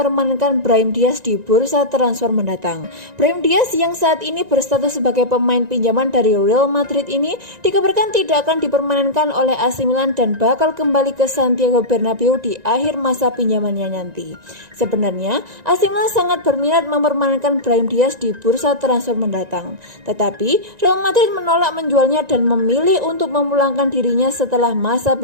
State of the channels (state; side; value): late; left; 1.9 ms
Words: Brahim Diaz di bursa transfer mendatang. Brahim Diaz yang saat ini berstatus sebagai pemain pinjaman dari Real Madrid ini dikabarkan tidak akan dipermanenkan oleh AC Milan dan bakal kembali ke Santiago Bernabeu di akhir masa pinjamannya nanti. Sebenarnya, AC Milan sangat berminat mempermanenkan Brahim Diaz di bursa transfer mendatang. Tetapi, Real Madrid menolak menjualnya dan memilih untuk memulangkan dirinya setelah masa